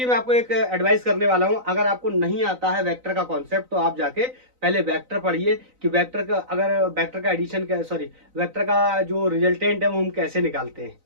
मैं आपको एक एडवाइस करने वाला हूं, अगर आपको नहीं आता है वेक्टर का कॉन्सेप्ट तो आप जाके पहले वेक्टर पढ़िए कि वेक्टर का, अगर वेक्टर का एडिशन का, सॉरी वेक्टर का जो रिजल्टेंट है वो हम कैसे निकालते हैं।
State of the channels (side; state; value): left; late; 3.9 ms